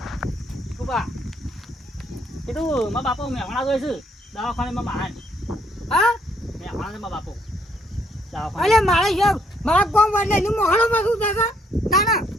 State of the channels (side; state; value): both; normal; correlation 0.69